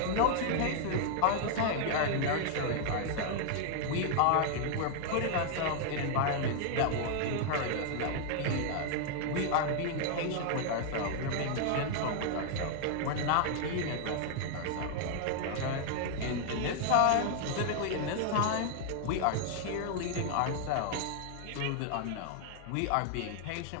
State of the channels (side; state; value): both; different; correlation 0.00